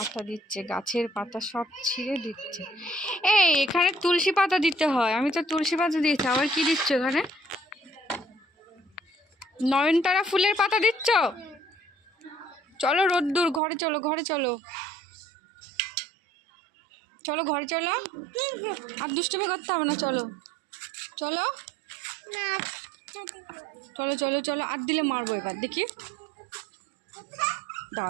দিচ্ছে, গাছের পাতা সব ছিঁড়ে দিচ্ছে। এই এখানে তুলসী পাতা দিতে হয়, আমি তো তুলসী পাতা দিয়েছি, আবার কি দিচ্ছ এখানে? নয়নতারা ফুলের পাতা দিচ্ছ? চলো রোদ্দুর, ঘরে চলো, ঘরে চলো, চলো ঘরে চলো। আর দুষ্টুমি করতে হবে না, চলো চলো চলো চলো চলো। আর দিলে মারবো এবার, দেখি,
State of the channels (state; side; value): drops out; left; at 13.6 s